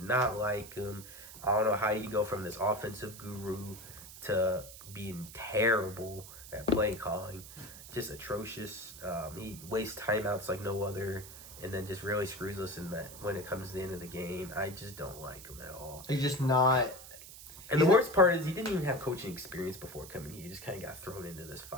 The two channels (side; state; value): right; noise; hiss, 15 dB below the sound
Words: like him. I don't know how you go from this offensive guru to being terrible at play calling, just atrocious. He wastes timeouts like no other, and then just really screws us in that when it comes to the end of the game. I just don't like him at all. He's just not. And the worst part is he didn't even have coaching experience before coming here. He just kind of got thrown into this